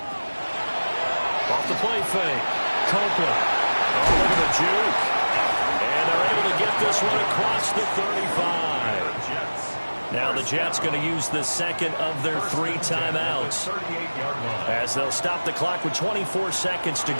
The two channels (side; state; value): both; inverted; correlation -1.00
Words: Off the play fake. Copeland. Oh, look at the juke. And they're able to get this one across the 35. Now the Jets going to use the second of their 3 timeouts as they'll stop the clock with 24 seconds to